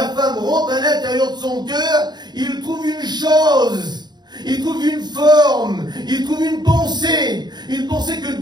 femme rentre à l'intérieur de son cœur, il trouve une chose. Il trouve une forme, il trouve une pensée que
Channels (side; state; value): left; late; 0.20 ms